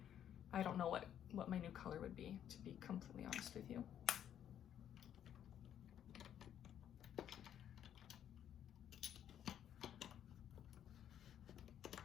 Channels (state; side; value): quieter; right; 10.0 dB